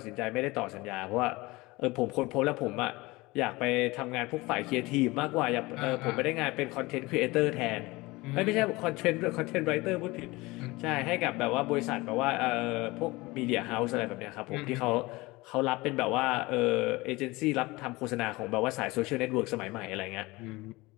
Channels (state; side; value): quieter; right; 22.0 dB